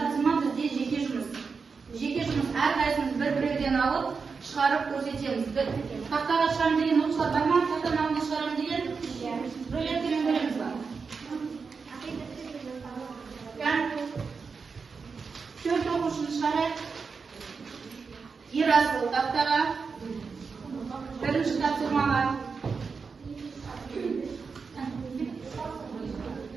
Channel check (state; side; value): quieter; left; 5.1 dB